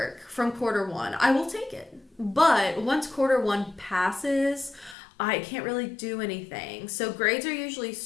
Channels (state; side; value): drops out; right; at 5.0 s